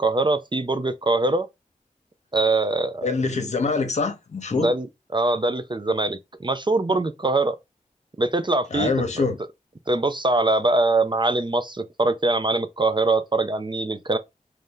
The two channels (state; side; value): normal; both; correlation 0.61